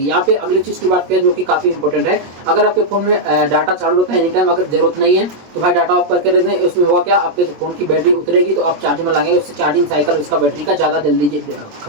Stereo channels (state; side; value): late; left; 23 ms